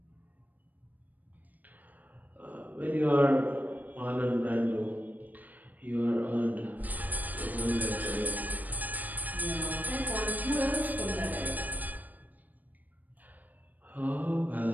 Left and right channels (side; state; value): left; late; 0.083 ms